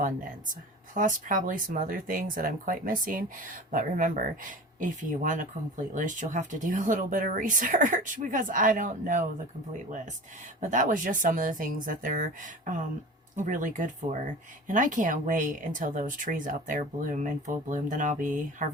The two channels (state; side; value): normal; both; correlation 0.36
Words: Plus probably some other things that I'm quite missing, but remember, if you want a complete list, you'll have to do a little bit of research because I don't know the complete list. But that was just some of the things that they're really good for. And I can't wait until those trees out there bloom in full bloom. Then I'll be